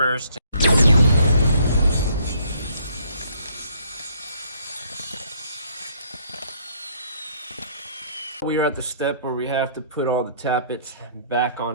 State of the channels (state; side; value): inverted; both; correlation -0.64